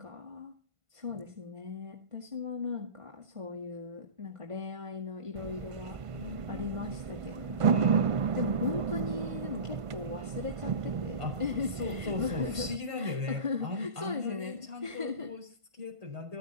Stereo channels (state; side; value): late; left; 1.5 ms